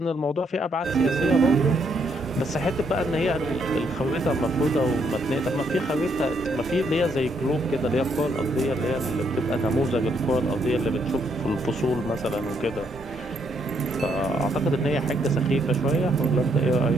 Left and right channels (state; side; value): normal; both; correlation 0.73